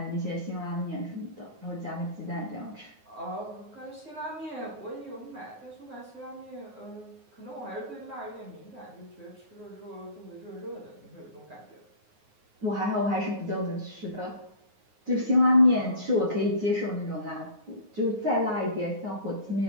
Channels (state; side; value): late; left; 9.5 ms